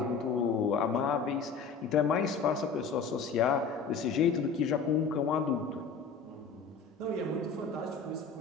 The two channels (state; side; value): quieter; right; 5.4 dB